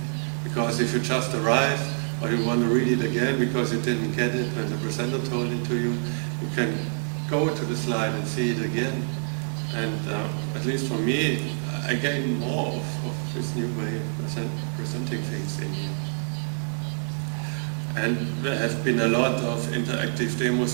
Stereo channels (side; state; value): left; silent; digital silence